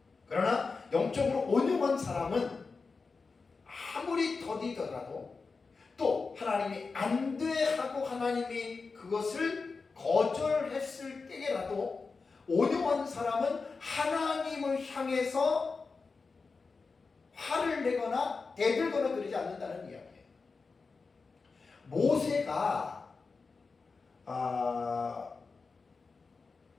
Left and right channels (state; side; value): quieter; right; 4.4 dB